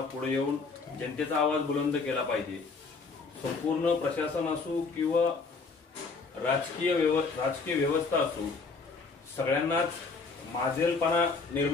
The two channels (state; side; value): quieter; right; 4.4 dB